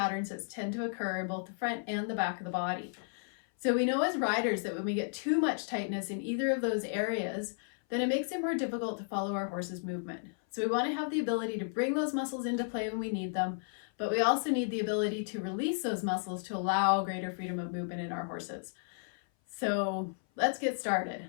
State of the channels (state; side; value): silent; right; 55 dB below the other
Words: that tend to occur in both the front and the back of the body. So we know as riders that when we get too much tightness in either of those areas, then it makes it more difficult to follow our horse's movement. So we want to have the ability to bring those muscles into play when we need them, but we also need the ability to release those muscles to allow greater freedom of movement in our horses. So let's get started.